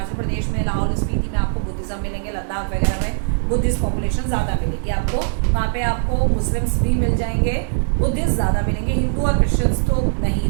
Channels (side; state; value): left; silent; digital silence